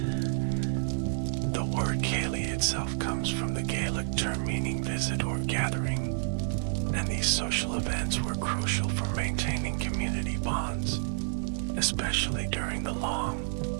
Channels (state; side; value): silent; left; digital silence